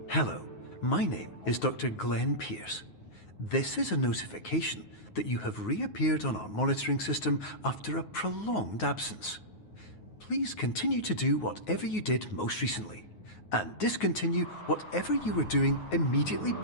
Hello, my name is Dr. Glenn Pierce. This is a notification that you have reappeared on our monitoring system after a prolonged absence. Please continue to do whatever you did most recently, and discontinue whatever you were doing immediately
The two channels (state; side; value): late; right; 9.4 ms